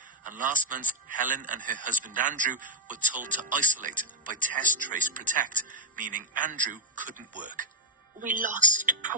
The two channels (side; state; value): both; normal; correlation 0.03